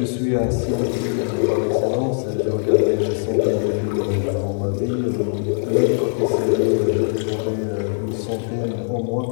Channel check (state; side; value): silent; right; digital silence